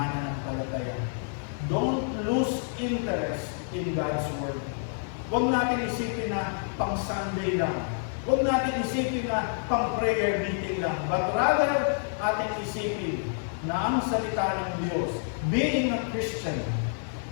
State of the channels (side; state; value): right; silent; digital silence